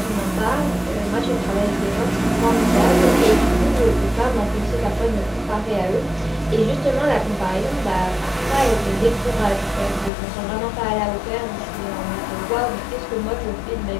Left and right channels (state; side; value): drops out; right; at 10.1 s